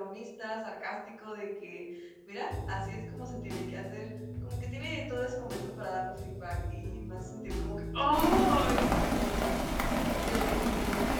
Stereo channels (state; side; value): identical; both; correlation 1.00